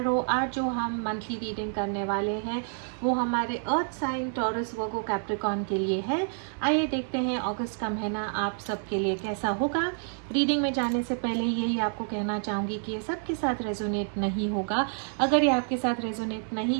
आज जो हम मंथली रीडिंग करने वाले हैं वो हमारे earth sign Taurus Virgo Capricorn के लिए है। आइए देखते हैं अगस्त का महीना आप सबके लिए कैसा होगा। रीडिंग में जाने से पहले यही आपको कहना चाहूँगी कि ये सबके साथ रेजोनेट नहीं होगा। अगर ये आपके साथ रेजोनेट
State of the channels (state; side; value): silent; left; 59 dB below the other